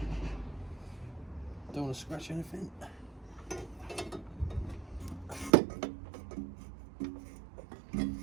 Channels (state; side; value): drops out; left; at 5.5 s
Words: Don't want to scratch anything.